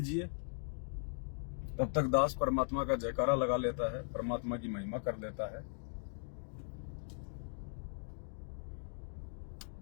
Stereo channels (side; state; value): right; silent; digital silence